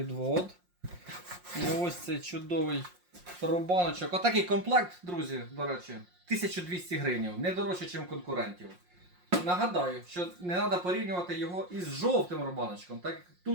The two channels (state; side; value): late; left; 5.6 ms